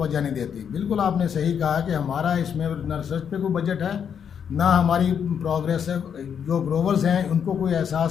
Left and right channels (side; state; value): right; quieter; 7.8 dB